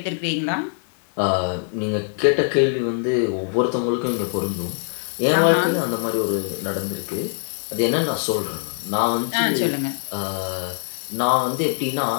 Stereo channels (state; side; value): silent; right; 64 dB below the other